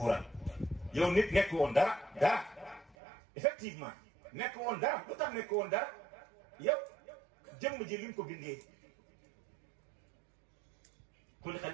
yow nit nekk woon dara effectivement nekk woon dara lu tax nekk woon dara yow jëmm ji liñ ko bindee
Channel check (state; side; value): drops out; left; at 3.0 s